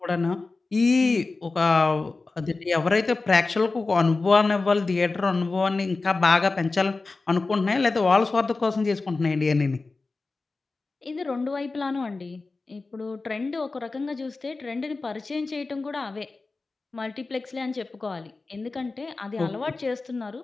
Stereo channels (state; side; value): quieter; right; 3.7 dB